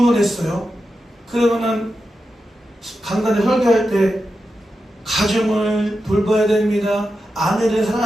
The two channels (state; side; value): normal; both; correlation 0.90